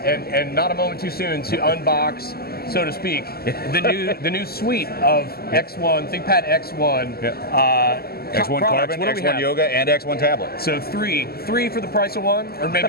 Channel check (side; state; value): right; late; 0.45 ms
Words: and not a moment too soon, to unbox, so to speak, the new suite of X1, ThinkPad X1. X1 Carbon, X1 Yoga, and X1 Tablet. So three for the price of one, or